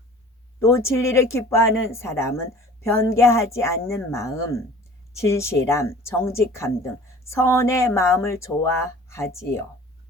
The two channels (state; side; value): normal; both; correlation 0.46